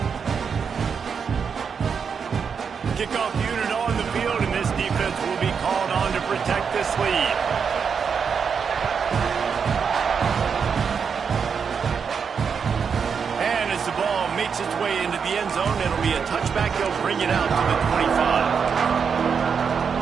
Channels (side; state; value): left; quieter; 6.3 dB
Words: Kickoff unit on the field, and this defense will be called on to protect this lead. And as the ball makes its way into the end zone, it'll be a touchback. They'll bring it out to the 25.